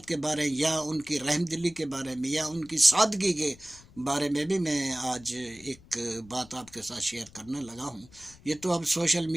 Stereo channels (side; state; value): left; noise; rumble, 23 dB below the sound